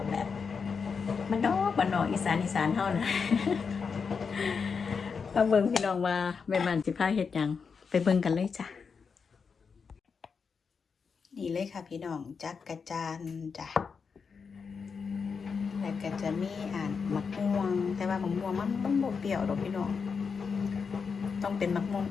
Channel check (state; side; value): quieter; right; 5.6 dB